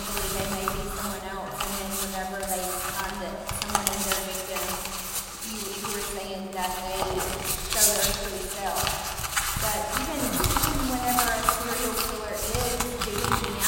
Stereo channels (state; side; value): identical; both; correlation 1.00